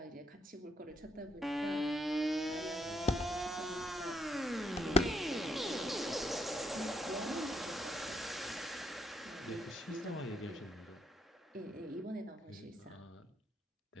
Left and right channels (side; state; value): both; normal; correlation 0.75